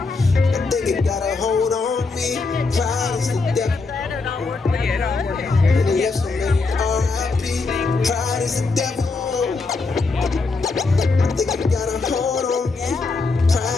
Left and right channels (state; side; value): quieter; right; 4.0 dB